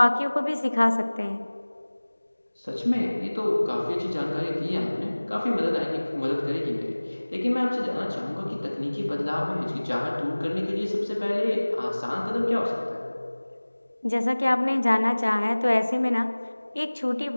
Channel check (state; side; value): inverted; both; correlation -1.00